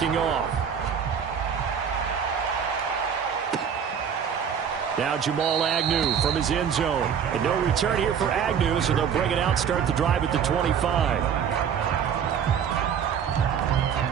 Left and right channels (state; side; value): quieter; left; 7.7 dB